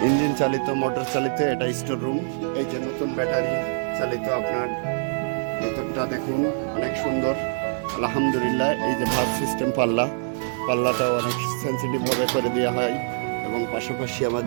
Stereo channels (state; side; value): silent; left; digital silence